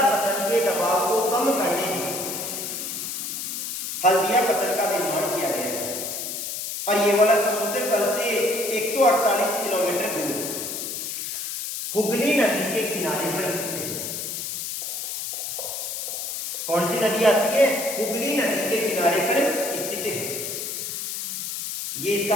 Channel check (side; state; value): left; noise; hiss, 5 dB below the sound